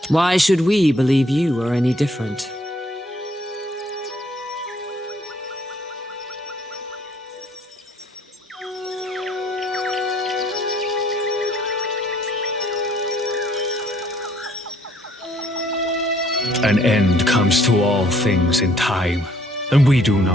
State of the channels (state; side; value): normal; both; correlation 0.64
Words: Why should we believe you are any different? An end comes to all things in time, and we do